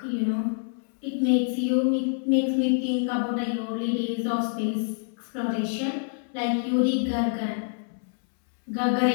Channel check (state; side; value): silent; right; 61 dB below the other